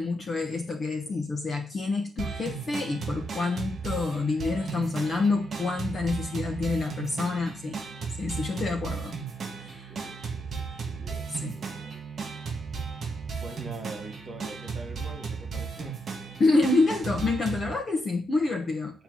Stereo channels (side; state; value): both; normal; correlation 0.82